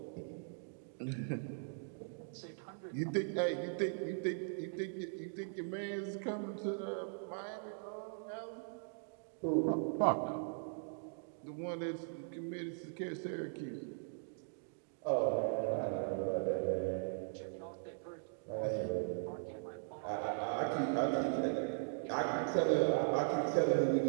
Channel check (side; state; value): left; silent; digital silence